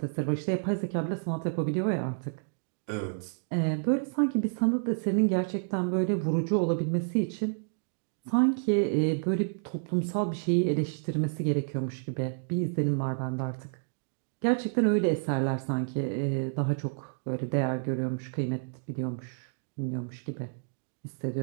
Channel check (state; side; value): silent; left; digital silence